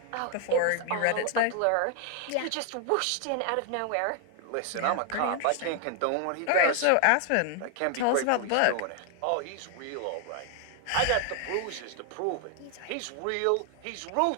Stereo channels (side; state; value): both; different; correlation 0.00